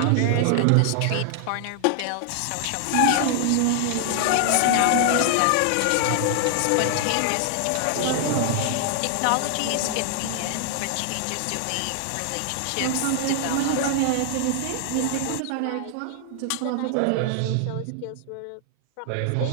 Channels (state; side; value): different; both; correlation 0.00